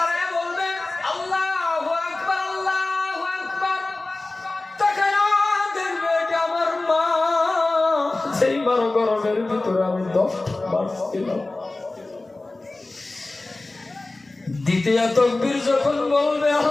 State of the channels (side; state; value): right; quieter; 3.1 dB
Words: বলবে আল্লাহু আকবার, আল্লাহু আকবার, তাকায় দেখবে এটা আমার মা, সেই মার গর্ভের ভিতরে আমি 10 মাস ছিলাম। দ্বিতীয় তাকবীর যখন বলবে